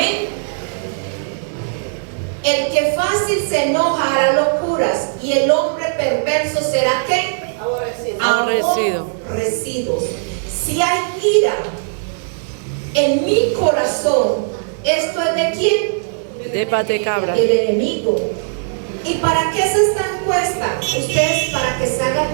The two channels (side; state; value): left; silent; digital silence